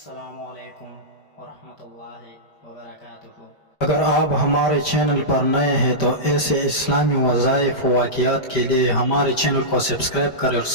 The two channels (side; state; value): right; late; 5.1 ms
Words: علیکم ورحمۃ اللہ وبرکاتہ۔ اگر آپ ہمارے چینل پر نئے ہیں تو ایسے اسلامی وظائف و واقعات کے لیے ہمارے چینل کو سبسکرائب کریں اور